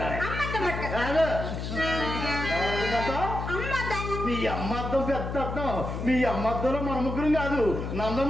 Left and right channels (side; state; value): left; noise; hum, 5 dB below the sound